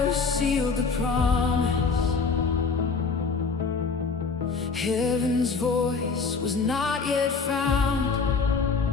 sealed the promise. Heaven's voice was not yet found.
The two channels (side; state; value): right; quieter; 4.9 dB